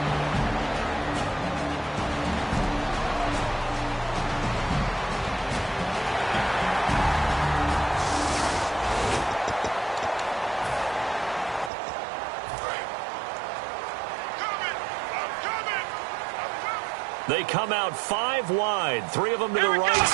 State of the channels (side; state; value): left; drops out; at 11.7 s